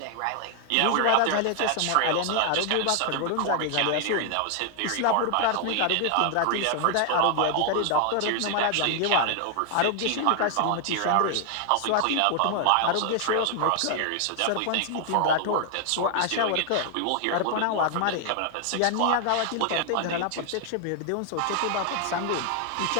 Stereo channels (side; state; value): both; different; correlation 0.00